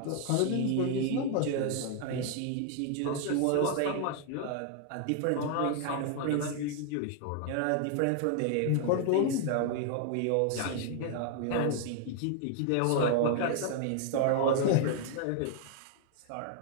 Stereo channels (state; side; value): different; both; correlation 0.00